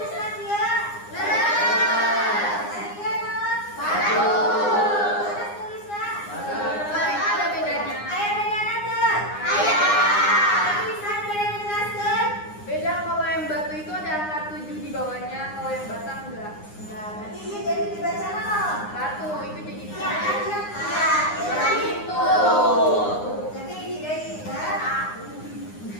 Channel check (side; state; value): right; late; 9.7 ms